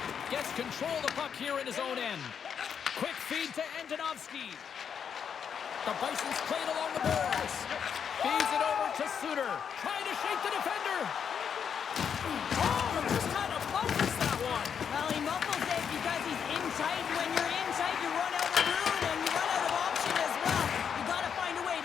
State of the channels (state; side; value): quieter; right; 7.5 dB